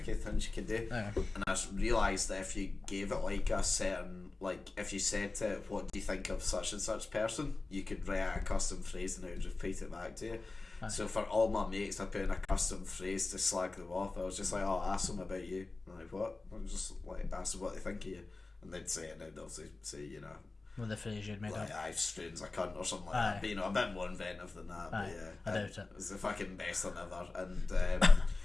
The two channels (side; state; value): right; quieter; 3.5 dB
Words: things you can do, and I realised that if you gave it like a certain, like if you said to it, what do you think of such and such person, you could write out a custom phrase and it would repeat it back to you. So for all my mates, I put in a custom phrase to slag them off. I was just like, oh, ask them about you. I'm like, what? I'm just like, ask them what they think of you, and they'd say it, and they'd obviously say, with the phrase you'd made like, up. I've strange a cunt or something like that. But, a bit more inventive than that. But yeah, I doubt it. It's the fucking best thing ever. And